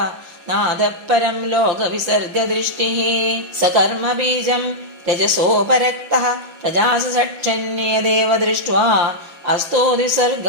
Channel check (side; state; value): left; late; 6.0 ms